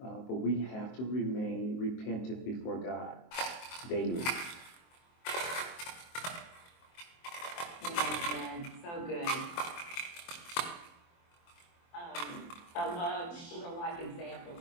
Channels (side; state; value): right; late; 23 ms